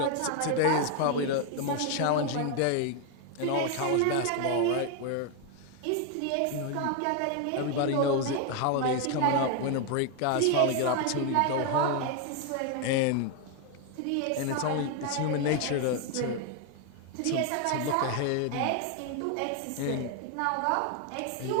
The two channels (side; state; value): both; different; correlation 0.01